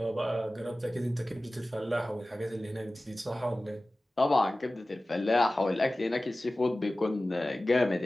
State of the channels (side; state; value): both; normal; correlation 0.97